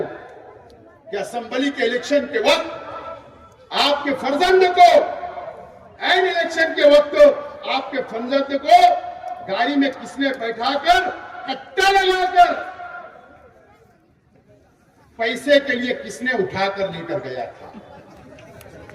कि असेंबली के इलेक्शन के वक्त आपके फर्जंद को, एन इलेक्शन के वक्त आपके फर्जंद को गाड़ी में किसने बैठाकर, कट्टा लगाकर पैसे के लिए किसने उठाकर लेकर गया था?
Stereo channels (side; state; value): both; identical; correlation 1.00